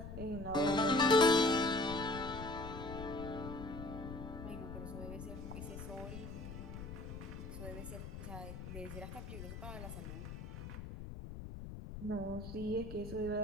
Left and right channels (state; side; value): noise; left; rumble, 9 dB below the sound